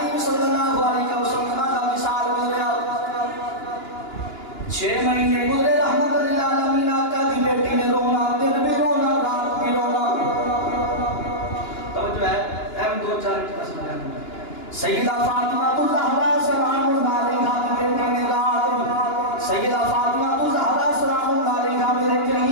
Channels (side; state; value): right; late; 2.9 ms